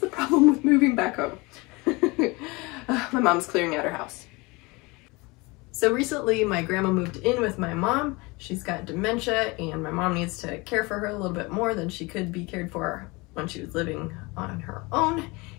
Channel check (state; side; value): quieter; right; 25.2 dB